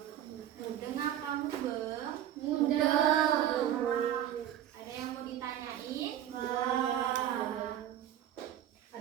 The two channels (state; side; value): quieter; left; 11.3 dB